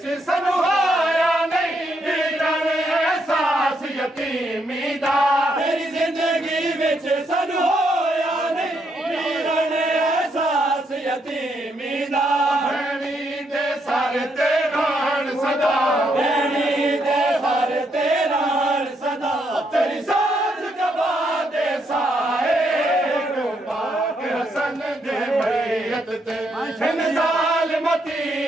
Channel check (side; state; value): both; normal; correlation 0.76